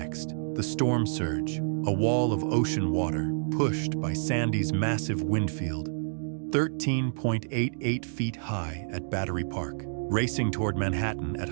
The storm surge, a wall of ocean water pushed by Sandy's massive wind field, 13.88 feet high at Battery Park, racing toward Manhattan at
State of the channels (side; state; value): left; silent; digital silence